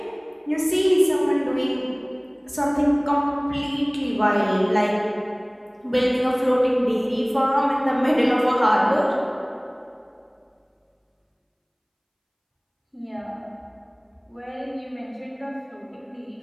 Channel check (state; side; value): identical; both; correlation 1.00